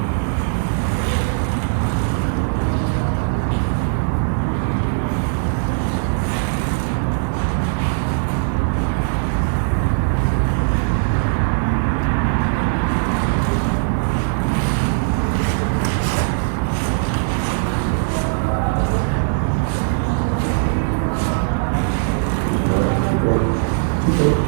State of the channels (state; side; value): silent; left; digital silence